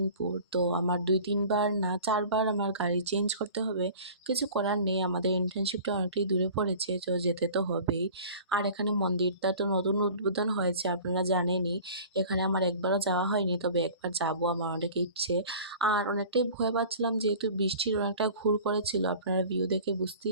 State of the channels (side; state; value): both; inverted; correlation -0.43